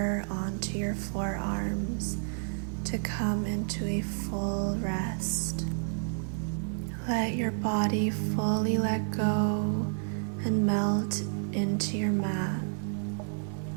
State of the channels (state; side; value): silent; left; digital silence